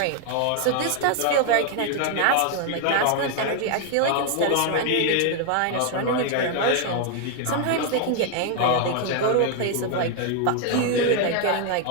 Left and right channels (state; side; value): different; both; correlation 0.00